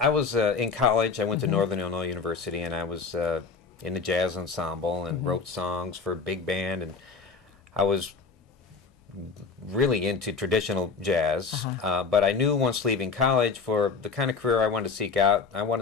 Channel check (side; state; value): right; quieter; 4.9 dB